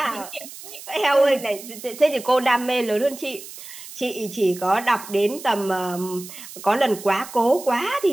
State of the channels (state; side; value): noise; right; hiss, 14 dB below the sound